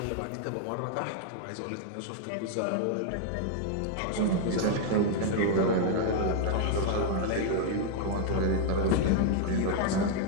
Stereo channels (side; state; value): both; different; correlation 0.00